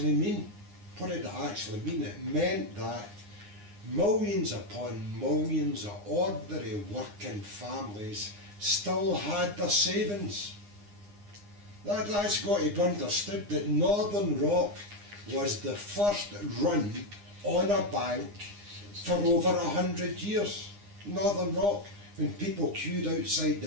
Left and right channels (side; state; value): left; late; 9.8 ms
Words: mean? What did it actually mean? It meant that millions upon millions of ordinary working families still had their savings. That's got to be understood, that Northern Rock was the first run on a bank for over 100 years. Northern Rock, when people queued outside